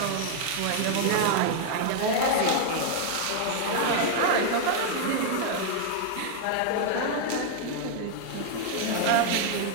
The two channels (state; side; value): different; both; correlation 0.00